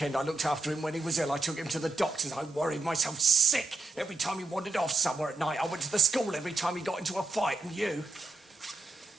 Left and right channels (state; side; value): quieter; left; 3.4 dB